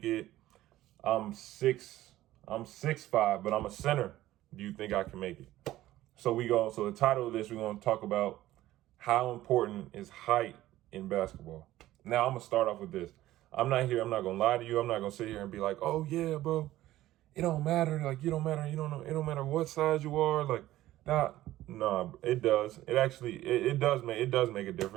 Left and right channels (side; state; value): left; quieter; 15.1 dB